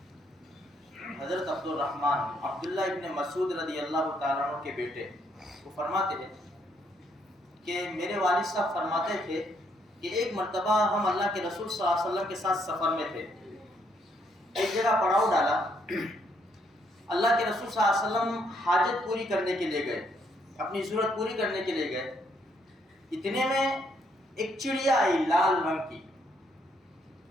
حضرت عبداللہ ابن مسعود رضی اللہ تعالیٰ عنہ کے بیٹے وہ فرماتے ہیں کہ میرے والد صاحب فرماتے تھے کہ ایک مرتبہ ہم اللہ کے رسول صلی اللہ علیہ وسلم کے ساتھ سفر میں تھے، ایک جگہ پڑاؤ ڈالا، اللہ کے رسول صلی اللہ علیہ وسلم حاجت پوری کرنے کے لیے گئے، اپنی ضرورت پوری کرنے کے لیے گئے، اتنے میں ایک چڑیا آئی لال رنگ کی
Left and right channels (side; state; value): both; normal; correlation 0.72